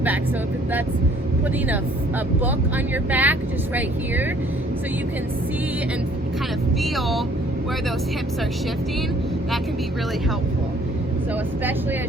So if that's putting a book on your back, just right here, so you can see and kind of feel where those hips are shifting, that can be really helpful. So especially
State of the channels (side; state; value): both; normal; correlation 0.59